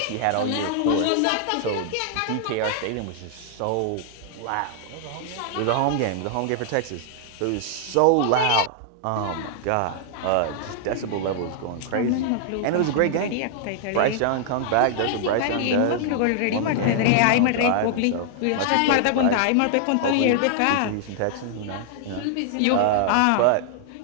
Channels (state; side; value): different; both; correlation 0.00